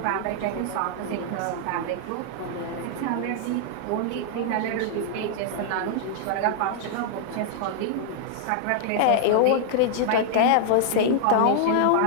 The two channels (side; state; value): both; different; correlation -0.01